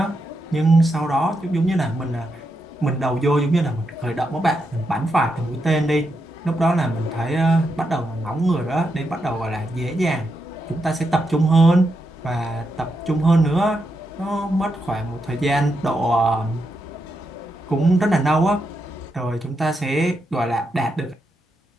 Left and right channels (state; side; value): normal; both; correlation 0.84